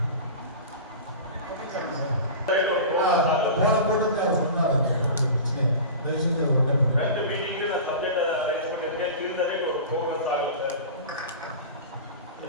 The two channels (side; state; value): both; inverted; correlation -0.33